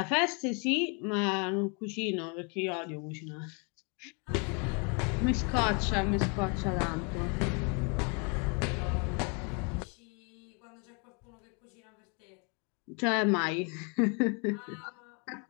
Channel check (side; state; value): right; quieter; 35.0 dB